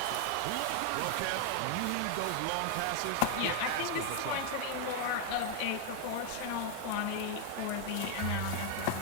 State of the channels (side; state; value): both; different; correlation 0.00